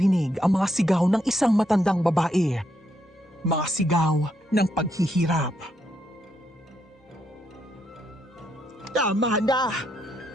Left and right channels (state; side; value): normal; both; correlation 0.78